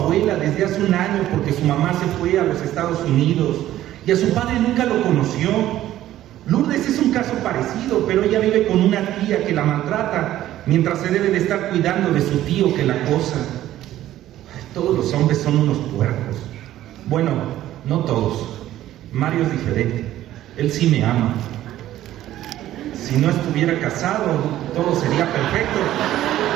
desde hace un año porque su mamá se fue a los Estados Unidos y a su padre nunca lo conoció. Lourdes es un caso parecido. pero ella vive con una tía que la maltrata, mientras se debe de estar cuidando de su tío que la acosa. Todos los hombres son unos puercos. Bueno, no todos. Mario es diferente. Él sí me ama. Si no estuviera casado, todo sería perfecto.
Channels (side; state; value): left; quieter; 13.5 dB